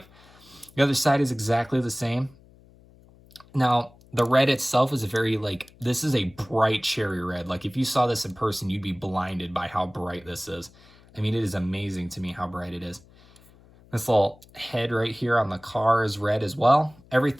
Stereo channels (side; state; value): left; noise; hum, 26 dB below the sound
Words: The other side is exactly the same. Now, the red itself is a very, like, this is a bright cherry red. Like, if you saw this in person, you'd be blinded by how bright this is. I mean, it is amazing to me how bright it is. This little head right here on the car is red as well.